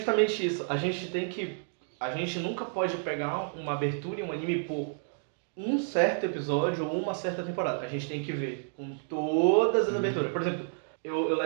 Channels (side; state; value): left; silent; digital silence